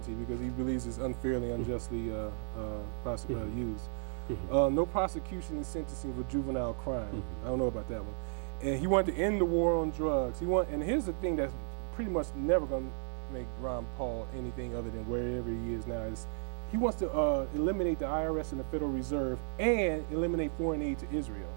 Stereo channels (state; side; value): silent; left; 55 dB below the other